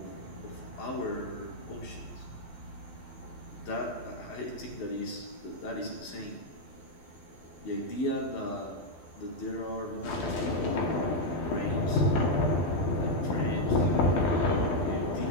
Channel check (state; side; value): late; right; 12 ms